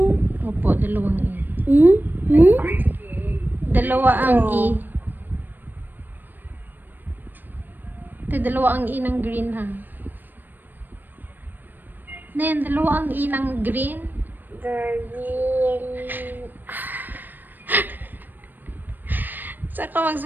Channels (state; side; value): late; left; 0.091 ms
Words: Opo, dalawang E. Hmm? Dalawa ang E. Oh. Ito, dalawa ang E ng green, ha? Nen, dalawa ang E ng green. Green. Saan ka